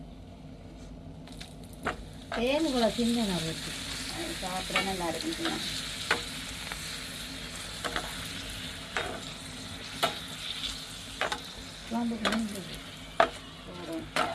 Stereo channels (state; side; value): identical; both; correlation 1.00